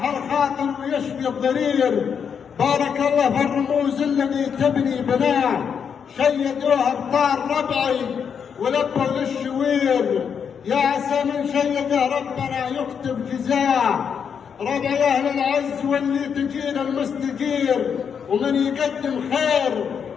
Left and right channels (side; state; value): right; quieter; 7.1 dB